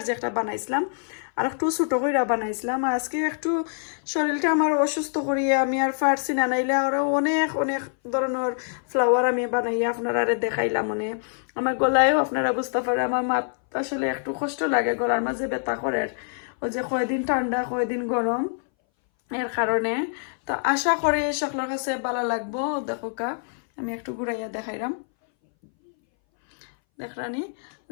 যে একটা বানাইছিলাম, আর একটু ছোটো করে বানাইছিলাম। আজকে একটু শরীরটা আমার অসুস্থ করিয়ে আমি আর পারছি না, নাইলে আরও অনেক অনেক ধরনের ফ্লাওয়ার আমি বানাইয়া আপনারা দেখাইলাম। মানে আমার গলায়ও আপনারা বুঝতে পারে, আমার মাত আসলে একটু কষ্ট লাগে, গলার মাঝে ব্যথা করে, ওই যে কয়দিন ঠান্ডা কয়দিন গরম, এর কারণে। তো আশা করি সকলের কাছে ভালো লাগবো। দেখো কা আমি একটু ঘুরাইয়া দেখাইলাম, দেখরানি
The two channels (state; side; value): silent; right; 60 dB below the other